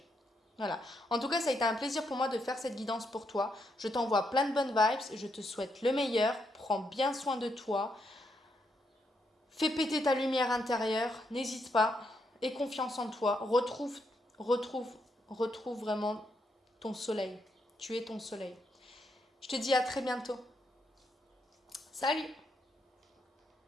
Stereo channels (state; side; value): normal; both; correlation 0.79